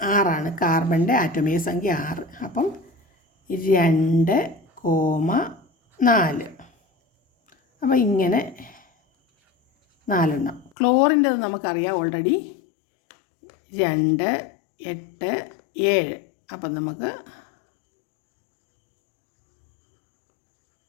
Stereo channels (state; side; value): drops out; right; at 10.7 s